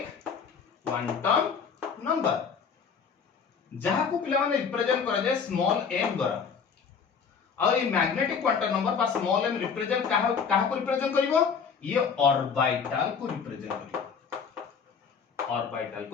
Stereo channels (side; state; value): right; quieter; 6.3 dB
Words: number जहां को पिला माने रिप्रेजेंट करा जाय स्मॉल m द्वारा और ये मैग्नेटिक क्वांटम नंबर पर स्मॉल m रिप्रेजेंट कहा को रिप्रेजेंट करिवो ये ऑर्बिटल को रिप्रेजेंट करिवो